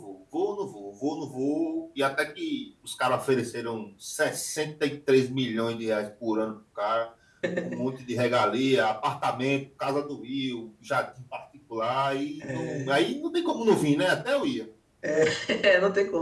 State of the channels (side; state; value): both; identical; correlation 1.00